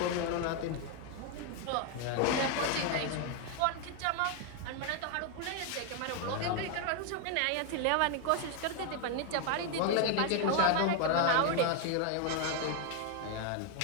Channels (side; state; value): both; different; correlation 0.01